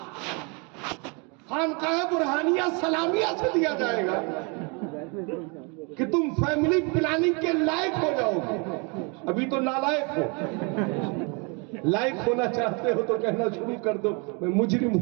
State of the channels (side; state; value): left; quieter; 32.8 dB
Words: خانقاہ برہانیہ سلامیہ سے دیا جائے گا کہ تم فیملی پلاننگ کے لائق ہو جاؤ گے. ابھی تو نالائق ہو. لائق ہونا چاہتے ہو تو کہنا شروع کر دو میں مجرم